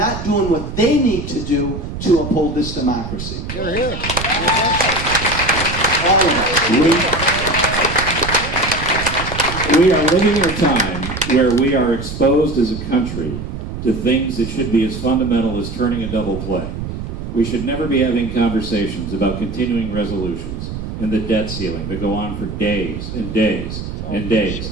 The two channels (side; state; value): right; noise; rumble, 7 dB below the sound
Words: doing what they need to do to uphold this democracy. You're here. All of us. We are living in a time where we are exposed as a country to things that should be as fundamental as turning a double play. We should never be having conversations about continuing resolutions and the debt ceiling that go on for days and days and